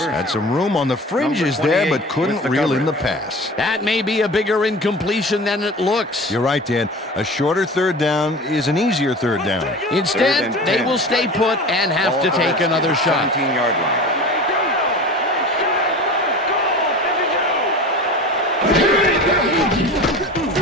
had some room on the fringes there, but couldn't reel in the pass. That may be a bigger incompletion than it looks. You're right, Dan. A shorter third down is an easier third down. Instead, they will stay put and have to take another shot. 17-yard line.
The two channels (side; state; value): both; normal; correlation 0.36